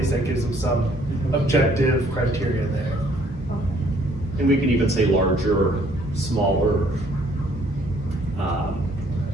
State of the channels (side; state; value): both; normal; correlation 0.63